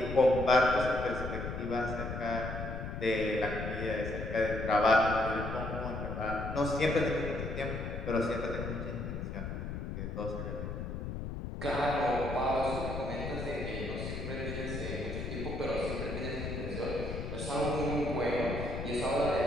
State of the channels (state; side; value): noise; left; rumble, 5 dB below the sound